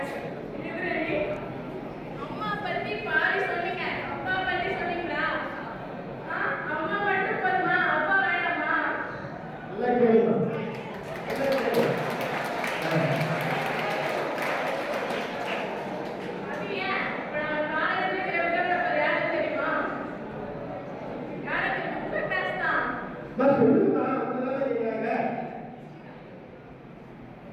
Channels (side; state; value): both; identical; correlation 1.00